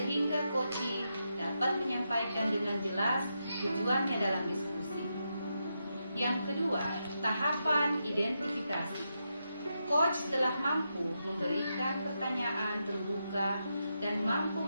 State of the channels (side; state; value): both; inverted; correlation -0.85